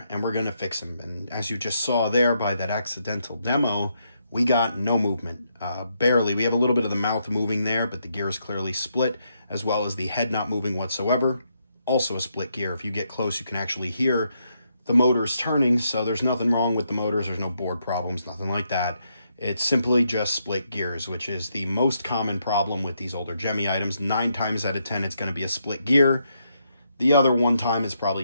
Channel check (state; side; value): inverted; both; correlation -0.78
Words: and we're going to fix him. And as you just saw there by that accidental demo, we got no movement, barely. We have a little bit of the mouth moving there, but the gear is clearly split, as well as the head not moving whatsoever. Also a split gear. If you get close, you can actually hear the motors turning, so there's nothing wrong with the motors. There's no board problems, nothing like that. It's simply just split gears, which is the most common problem with these older Gemmy items. 9 times out of 10, it's going to be a split gear. The other 1 time is probably